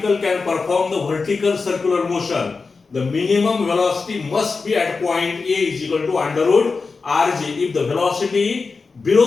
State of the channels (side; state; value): right; quieter; 4.4 dB